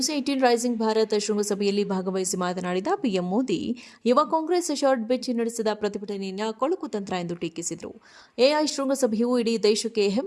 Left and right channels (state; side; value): identical; both; correlation 1.00